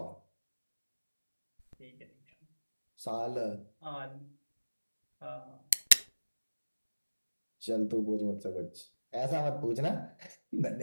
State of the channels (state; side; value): inverted; both; correlation -1.00